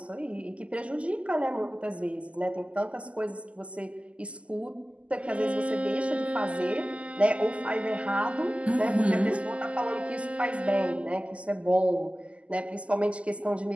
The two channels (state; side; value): late; left; 0.060 ms